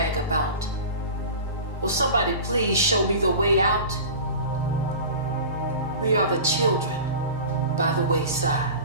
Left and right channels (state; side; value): inverted; both; correlation -0.35